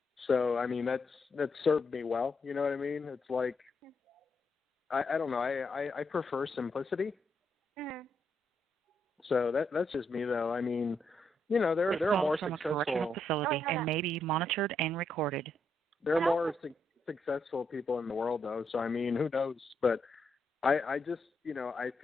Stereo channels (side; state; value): both; normal; correlation 0.79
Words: So, I mean, that's served me well, you know what I mean? It's like, I don't know, I prefer simplicity. So that's just me, though. I mean, you know, there are more from successful. A correctional facility and may be monitored and recorded. There are more successful people in the world, though. So I mean, who knows? But I just, you know, I